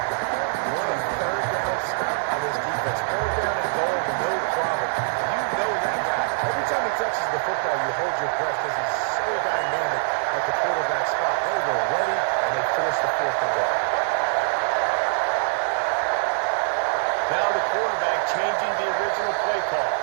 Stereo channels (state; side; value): silent; left; digital silence